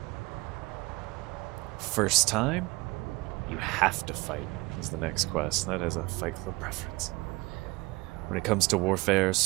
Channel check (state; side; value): quieter; left; 23.0 dB